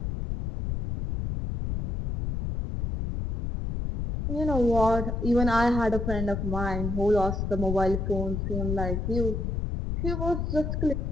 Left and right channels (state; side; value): noise; left; rumble, 2 dB below the sound